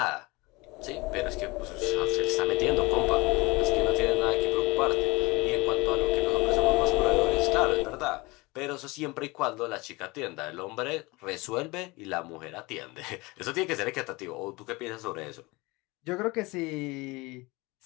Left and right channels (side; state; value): right; quieter; 23.8 dB